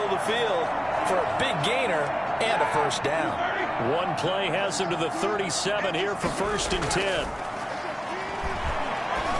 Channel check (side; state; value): both; identical; correlation 1.00